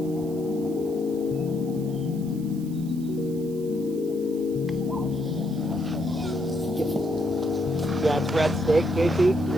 Yeah, it's red steak, JT.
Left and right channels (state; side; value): noise; right; hiss, 22 dB below the sound